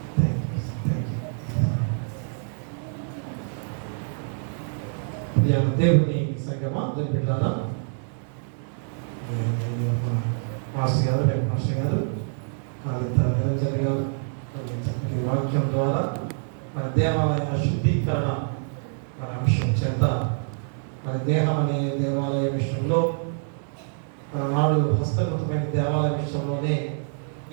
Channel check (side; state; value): left; silent; digital silence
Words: దేవుని సంగమా బిడ్డారా, మాస్టర్ గారు, రేపు మాస్టర్ గారు, కాళిత నిరంజన్ గారు చక్కటి వాక్యం ద్వారా మన దేవాలయ శుద్ధీకరణ మన అంశం చేత మన దేహం అనే దేవాలయ విషయంలో నాడు హస్తగతమైన దేవాలయ విషయంలోనే